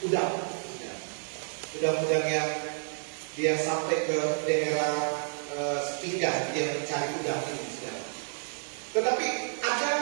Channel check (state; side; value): silent; left; 58 dB below the other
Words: udang. Udang-udang yang dia sampai ke daerah sepinggan, dia mencari udang ini. Tetapi ada